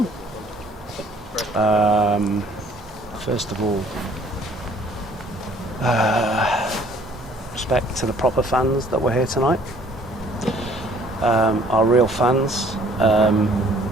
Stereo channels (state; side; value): normal; both; correlation 0.57